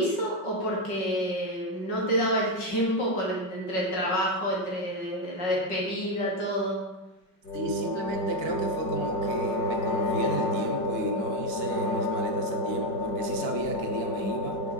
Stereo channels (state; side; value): late; right; 5.2 ms